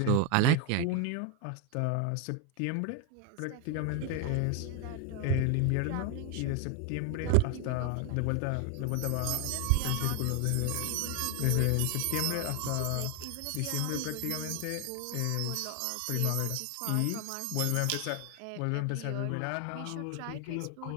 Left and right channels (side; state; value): both; different; correlation 0.01